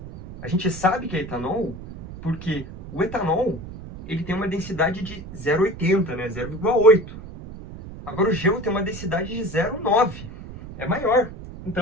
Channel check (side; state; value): right; noise; rumble, 13 dB below the sound